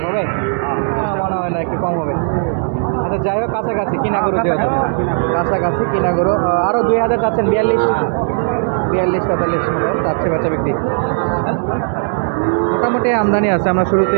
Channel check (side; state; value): left; silent; digital silence